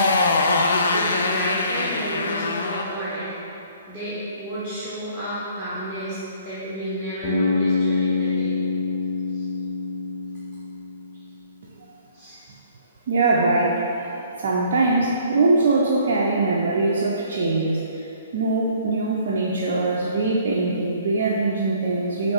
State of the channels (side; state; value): both; inverted; correlation -0.59